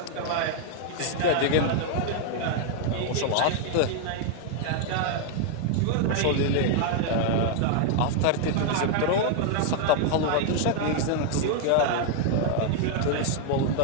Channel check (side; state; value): both; different; correlation 0.00